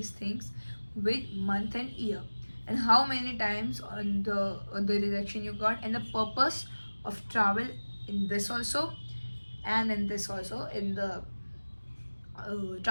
things with month and year, and how many times on the rejection you got, and the purpose of travel in this also, and in this also, in the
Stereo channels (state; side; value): inverted; both; correlation -1.00